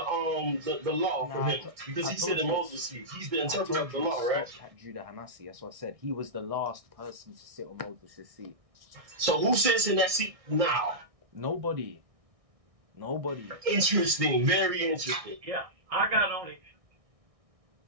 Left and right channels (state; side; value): late; left; 1.6 ms